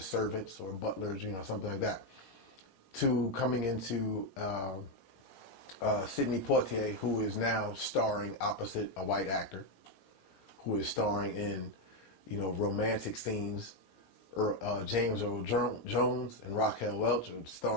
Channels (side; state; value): right; late; 17 ms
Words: servants or butlers, something like that, to coming into Sidney Poitier, who is now starring opposite a white actor, who is starring in, romantic scenes. James Earl Jones and Raquel Welch are